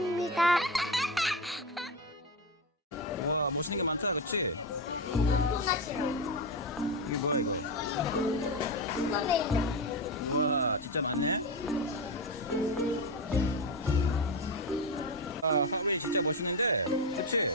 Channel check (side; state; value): both; normal; correlation 0.14